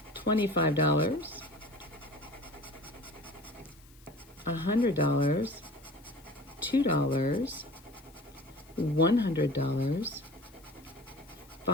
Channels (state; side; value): noise; left; hiss, 27 dB below the sound